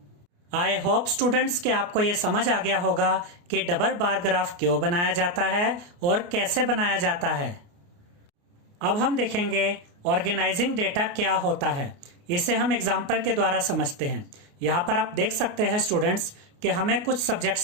आई होप स्टूडेंट्स कि आपको ये समझ आ गया होगा कि डबल बार ग्राफ क्यों बनाया जाता है और कैसे बनाया जाता है। अब हम देखेंगे ऑर्गेनाइजिंग डेटा क्या होता है। इसे हम एग्जाम्पल के द्वारा समझते हैं। यहाँ पर आप देख सकते हैं स्टूडेंट्स कि हमें कुछ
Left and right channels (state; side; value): late; left; 29 ms